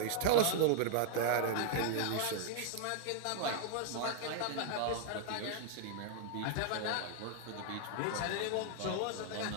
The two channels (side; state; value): both; different; correlation 0.00